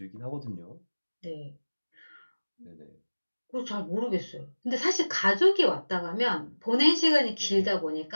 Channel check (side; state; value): both; inverted; correlation -1.00